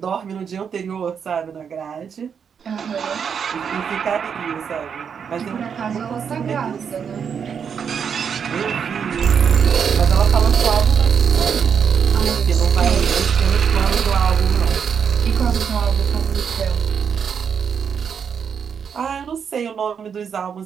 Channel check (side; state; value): left; quieter; 7.0 dB